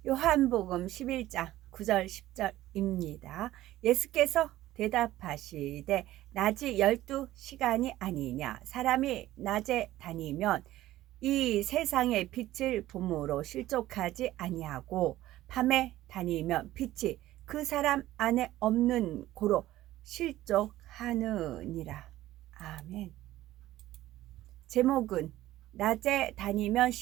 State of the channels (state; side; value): quieter; left; 15.2 dB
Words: 요한복음 11장 9절 10절입니다. 예수께서 대답하시되 낮이 12시간이 아니냐. 사람이 낮에 다니면 이 세상의 빛을 봄으로 실족하지 아니하고 밤에 다니면 빛이 그 사람 안에 없는 고로 실족하느니라. 아멘. 제목은 낮에 다니면